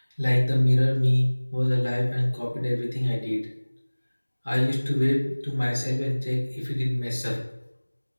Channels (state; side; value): inverted; both; correlation -1.00